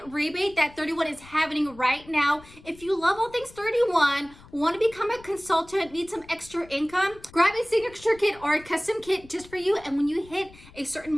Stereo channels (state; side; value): noise; left; rumble, 22 dB below the sound